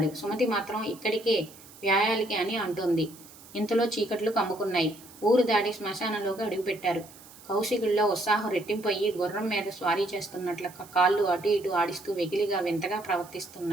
సుమతి మాత్రం ఇక్కడికే వ్యాయాలికి అని అంటోంది. ఇంతలో చీకట్లు కమ్ముకున్నాయి. ఊరు దాటి శ్మశానంలోకి అడుగుపెట్టారు. కౌశికుల్లో ఉత్సాహం రెట్టింపయ్యి గుర్రం మీద స్వారీ చేస్తున్నట్లు కాళ్ళు అటు ఇటు ఆడిస్తూ వెకిలిగా వింతగా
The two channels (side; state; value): right; noise; hiss, 21 dB below the sound